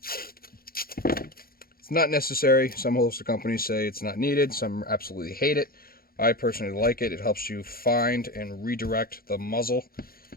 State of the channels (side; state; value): right; late; 0.43 ms